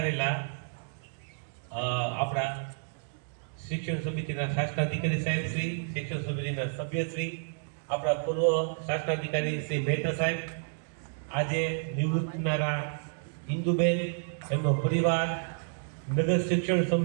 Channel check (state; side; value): silent; left; digital silence